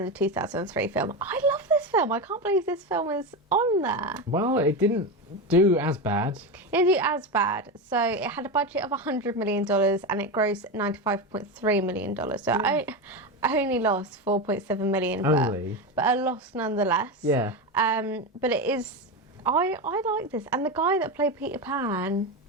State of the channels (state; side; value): normal; both; correlation 0.17